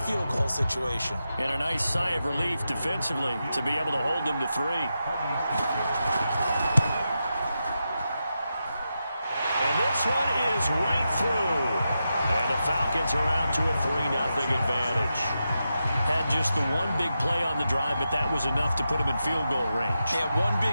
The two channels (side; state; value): both; inverted; correlation -0.88